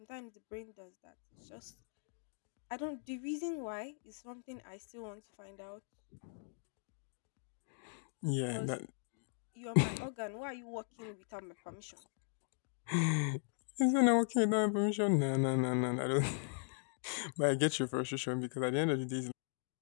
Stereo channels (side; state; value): right; silent; digital silence